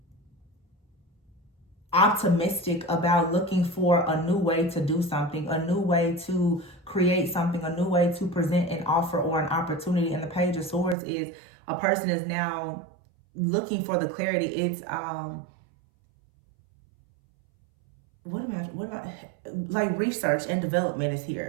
optimistic about looking for a new way to do something, a new way to create something, a new way to present an offer or an opportunity. And the Page of Swords is a person is now looking for the clarity. It's like research and development is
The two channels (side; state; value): left; drops out; at 11.0 s